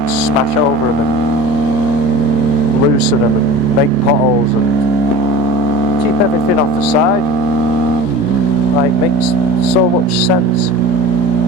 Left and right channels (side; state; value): both; normal; correlation 0.37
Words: smash over them. loosen them and make potholes and keep everything off the side. Like, makes so much sense.